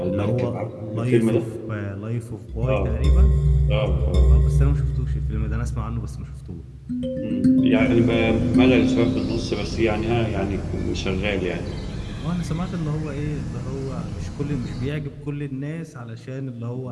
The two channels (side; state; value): both; identical; correlation 1.00